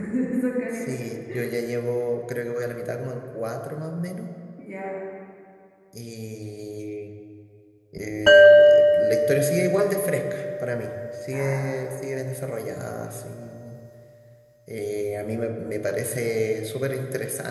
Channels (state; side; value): identical; both; correlation 1.00